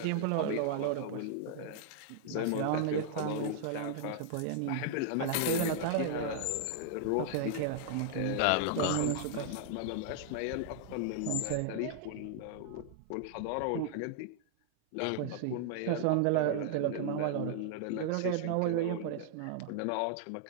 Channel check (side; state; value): both; different; correlation -0.01